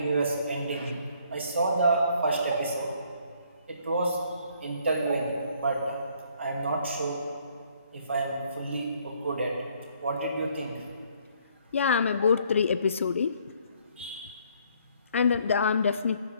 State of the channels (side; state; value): both; inverted; correlation -0.65